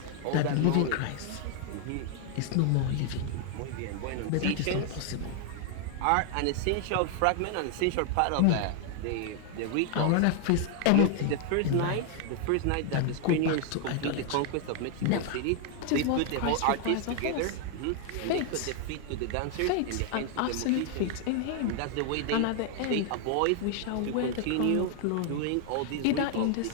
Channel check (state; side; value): different; both; correlation 0.00